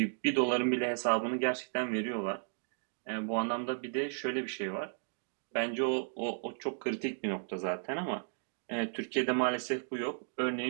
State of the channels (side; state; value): left; silent; digital silence